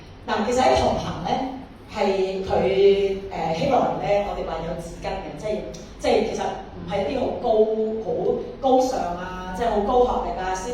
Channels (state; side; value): identical; both; correlation 1.00